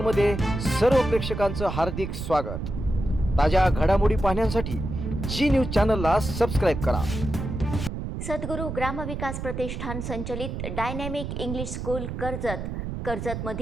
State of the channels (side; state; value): right; noise; rumble, 5 dB below the sound